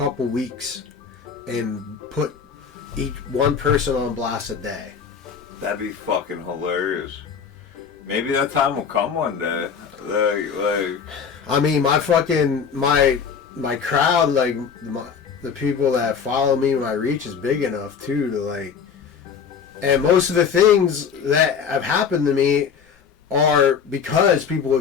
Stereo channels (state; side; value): quieter; right; 6.6 dB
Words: weeks and put each one person on blast a day. That'd be fucking hilarious. Maybe that time will come one day. Like. I mean, my crowd, like, the people that follow me, my reach is big enough too to, like, and most of the things that have happened to me are because people